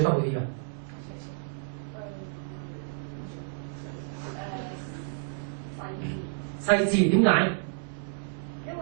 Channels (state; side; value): silent; left; digital silence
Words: 得好啲㗎？細緻點解？因為